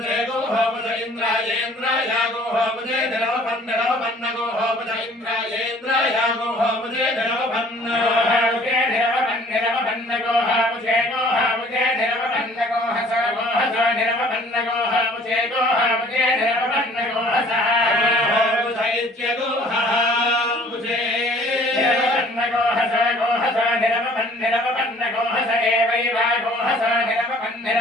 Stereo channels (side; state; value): both; normal; correlation 0.54